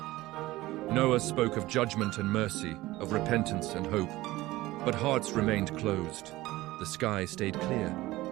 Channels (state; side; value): quieter; left; 18.1 dB